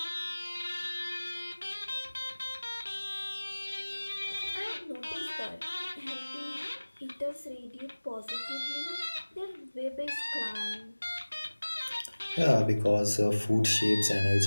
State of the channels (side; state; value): both; inverted; correlation -1.00